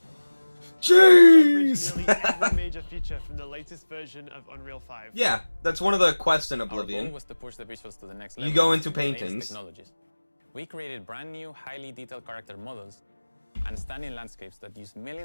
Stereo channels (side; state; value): both; inverted; correlation -1.00